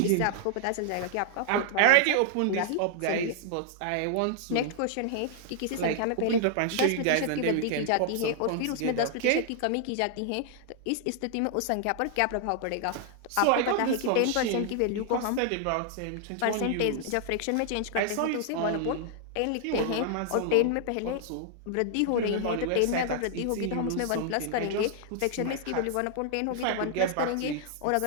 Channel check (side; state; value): both; different; correlation -0.01